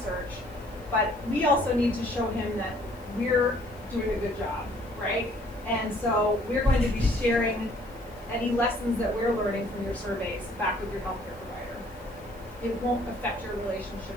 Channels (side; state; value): left; noise; hiss, 27 dB below the sound